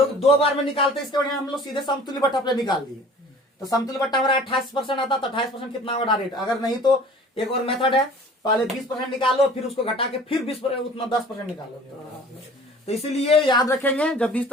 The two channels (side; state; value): both; normal; correlation 0.47